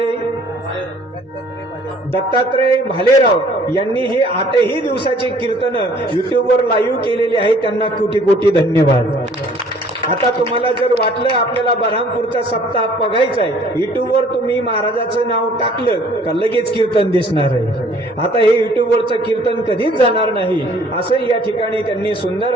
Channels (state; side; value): normal; both; correlation 0.56